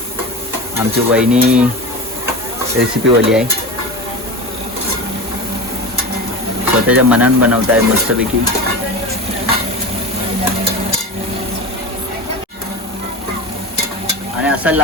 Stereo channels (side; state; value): both; normal; correlation 0.27